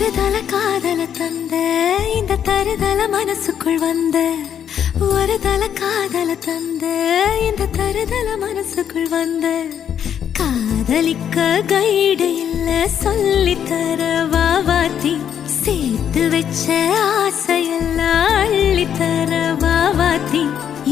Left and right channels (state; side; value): quieter; right; 9.0 dB